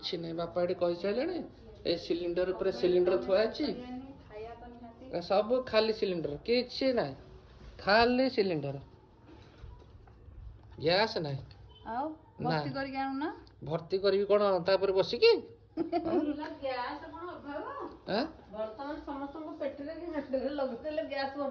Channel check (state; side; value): identical; both; correlation 1.00